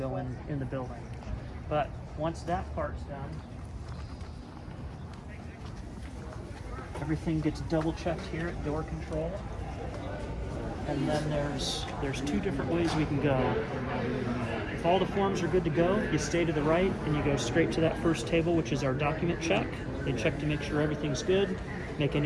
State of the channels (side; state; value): both; identical; correlation 1.00